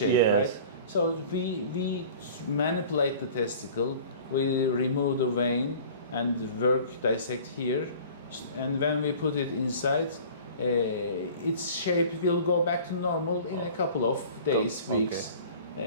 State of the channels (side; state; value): both; inverted; correlation -0.44